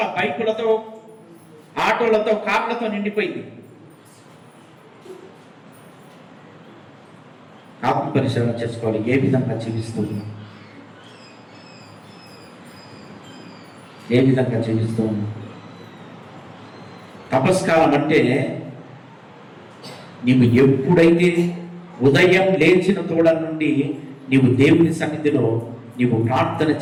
బైకులతో, ఆటోలతో, కార్లతో నిండిపోయింది. ఆత్మ పరిశీలన చేసుకోవాలి. ఏ విధంగా జీవిస్తూ ఉన్నాం? ఏ విధంగా జీవిస్తూ ఉన్నాం? తపస్కాలం అంటే నీవు ఎప్పుడైతే ఉదయం లేచిన తోడ నుండి నీవు దేవుని సన్నిధిలో నీవు ప్రార్థన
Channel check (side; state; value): both; identical; correlation 1.00